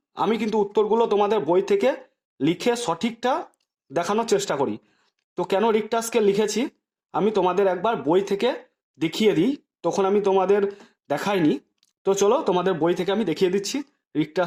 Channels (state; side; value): identical; both; correlation 1.00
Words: আমি কিন্তু উত্তরগুলো তোমাদের বই থেকে লিখে সঠিকটা দেখানোর চেষ্টা করি। তো কেন রিক্টার স্কেল লিখেছি আমি তোমাদের একবার বই থেকে দেখিয়ে দিই, তখন আমি তোমাদের দেখাইনি। তো চলো তোমাদের বই থেকে আমি দেখিয়ে দিচ্ছি রিক্টার